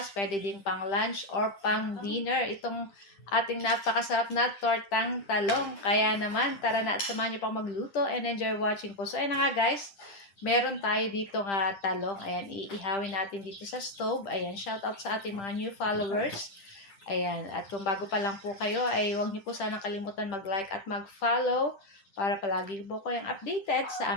pwede din pang lunch or pang dinner. Itong ating napakasarap na tortang talong. Kaya naman, tara na at samahan niyo po ako magluto and enjoy watching po. So ayan na nga guys, meron tayo dito nga talong. Ayan, iihawin natin dito sa stove. Ayan, shout out sa ating mga new followers. Ayan, at kung bago pa lang po kayo, ay huwag niyo po sanang kalimutan mag-like at mag-follow para palagi po kayong updated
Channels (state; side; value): late; right; 10 ms